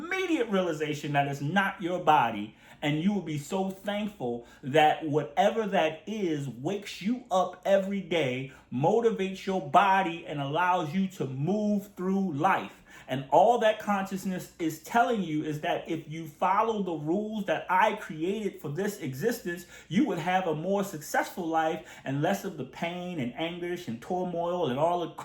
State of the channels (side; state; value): both; identical; correlation 1.00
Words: realization that it's not your body, And you will be so thankful that whatever that is wakes you up every day, motivates your body, and allows you to move through life. And all that consciousness is telling you is that if you follow the rules that I created for this existence, you would have a more successful life and less of the pain and anguish and turmoil and all the